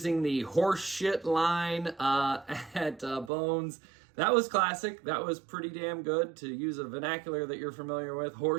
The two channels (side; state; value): left; drops out; at 3.3 s